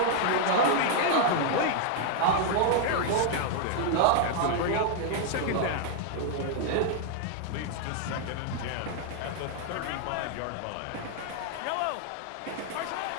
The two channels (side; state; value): both; different; correlation 0.00